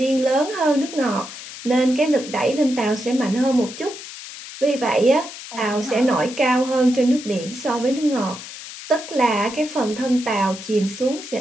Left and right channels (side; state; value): left; noise; hiss, 13 dB below the sound